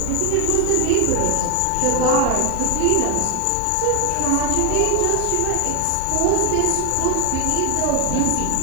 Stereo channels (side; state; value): both; different; correlation 0.00